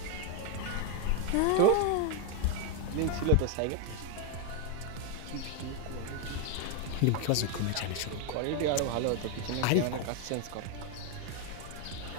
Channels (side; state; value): both; different; correlation 0.01